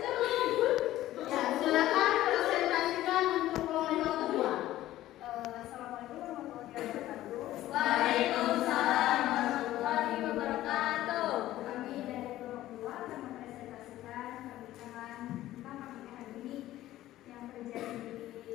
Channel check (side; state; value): right; quieter; 14.7 dB